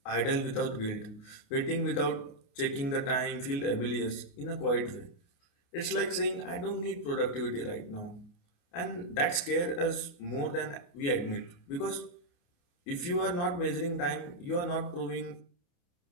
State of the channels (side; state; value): right; late; 28 ms